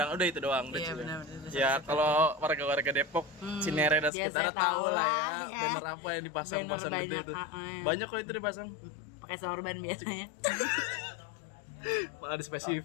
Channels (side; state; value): right; drops out; at 4.1 s